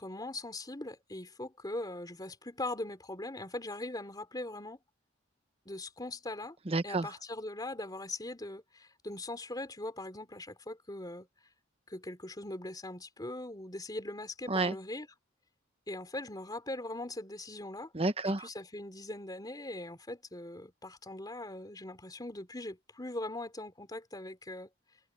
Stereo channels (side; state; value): both; normal; correlation 0.53